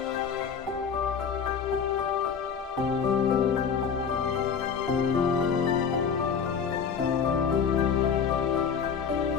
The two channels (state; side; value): quieter; right; 6.7 dB